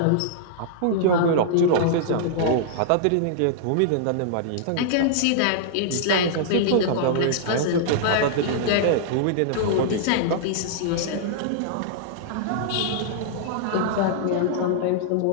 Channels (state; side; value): different; both; correlation -0.01